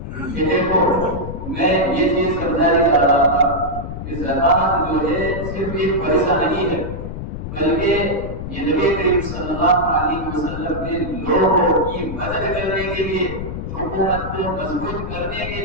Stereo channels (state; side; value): noise; left; rumble, 7 dB below the sound